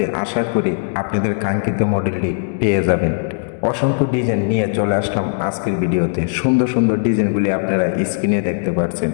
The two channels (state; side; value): silent; right; digital silence